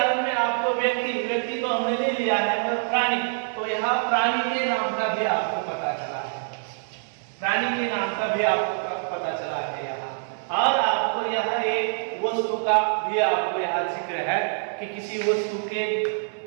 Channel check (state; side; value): silent; left; 61 dB below the other